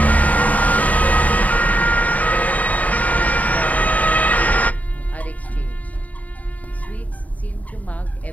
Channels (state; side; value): late; right; 0.072 ms